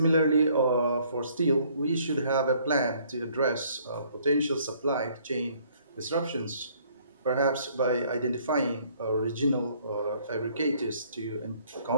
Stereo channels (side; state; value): both; inverted; correlation -0.62